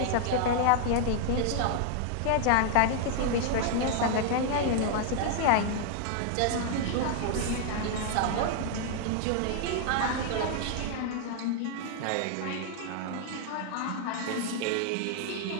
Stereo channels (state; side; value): different; both; correlation 0.00